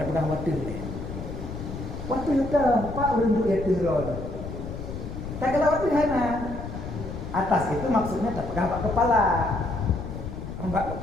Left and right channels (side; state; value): left; noise; rumble, 8 dB below the sound